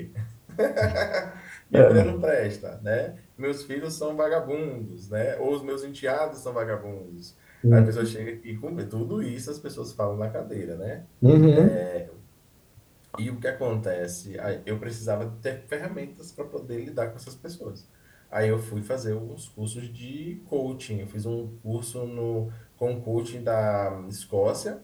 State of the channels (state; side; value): identical; both; correlation 1.00